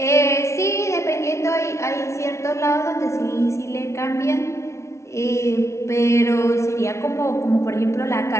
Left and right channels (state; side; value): late; right; 0.13 ms